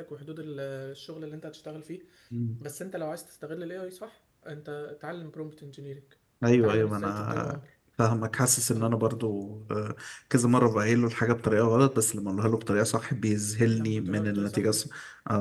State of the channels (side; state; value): both; identical; correlation 1.00